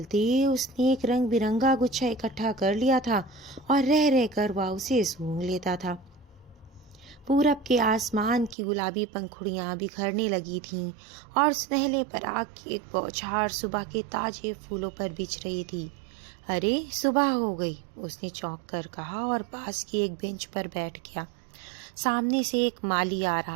उसने एक रंग बिरंगा गुच्छा इकट्ठा कर लिया था और रह रह कर वह उसे सूंघ लेता था। पूरब के आसमान की गुलाबी पंखुड़ियां बिखरने लगी थीं और सुनहले पराग की एक बौछार सुबह के ताजे फूलों पर बिछ रही थी। अरे सुबह हो गई, उसने चौंक कर कहा और पास की एक बेंच पर बैठ गया। सामने से एक माली आ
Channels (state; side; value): drops out; left; at 8.6 s